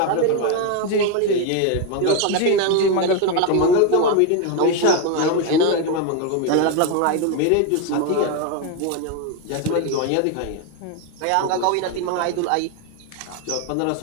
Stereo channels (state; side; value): different; both; correlation 0.02